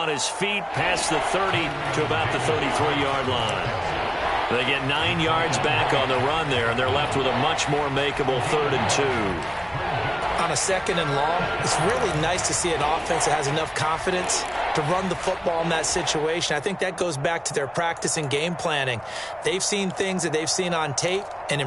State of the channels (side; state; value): both; identical; correlation 1.00